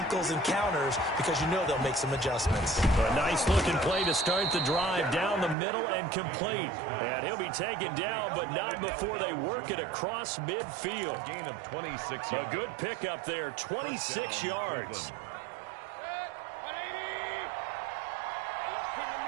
and counters because you know they'll make some adjustments. A nice-looking play to start the drive down the middle and complete. And he'll be taken down, but not before they work it across midfield. Gain of 26 A yards. good pickup there, 26 yards.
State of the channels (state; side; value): drops out; left; at 5.6 s